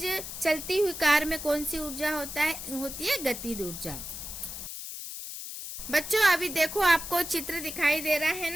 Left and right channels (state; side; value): noise; left; hiss, 8 dB below the sound